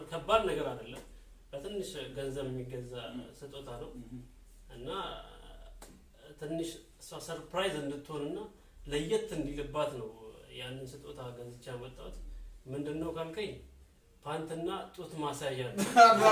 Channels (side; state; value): both; identical; correlation 1.00